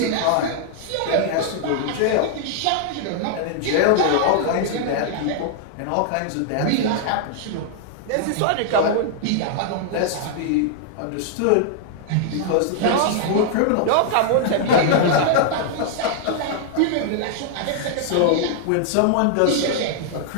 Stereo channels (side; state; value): both; different; correlation 0.00